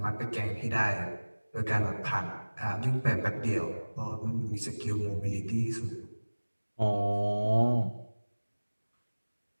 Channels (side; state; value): both; inverted; correlation -1.00